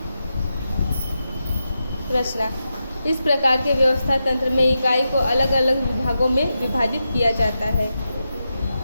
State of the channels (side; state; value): both; inverted; correlation -0.88